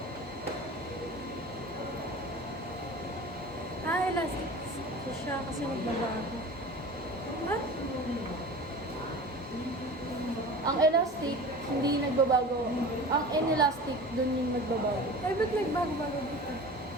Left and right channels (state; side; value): normal; both; correlation 0.36